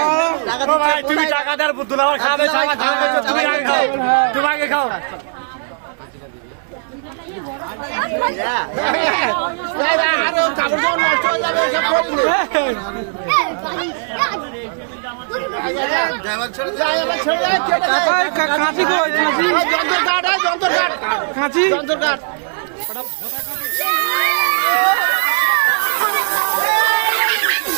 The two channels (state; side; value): silent; left; 68 dB below the other